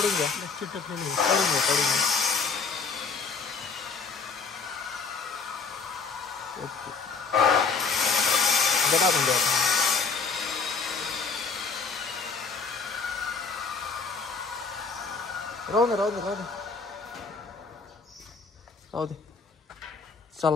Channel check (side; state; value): right; quieter; 5.0 dB